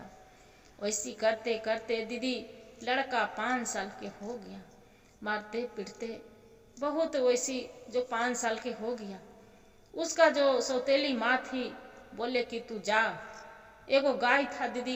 वैसी करते करते दीदी लड़का 5 साल के हो गया, मारते पीटते बहुत। वैसी जो 5 साल के हो गया, उसका जो सौतेली माँ थी बोले कि तू जा। एगो गाय था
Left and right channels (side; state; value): both; identical; correlation 1.00